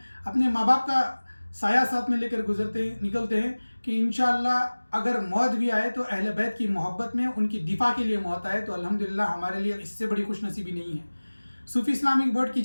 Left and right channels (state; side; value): inverted; both; correlation -1.00